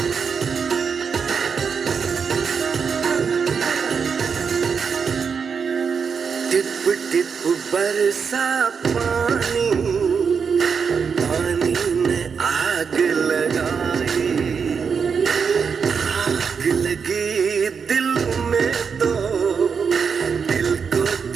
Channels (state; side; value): quieter; left; 6.1 dB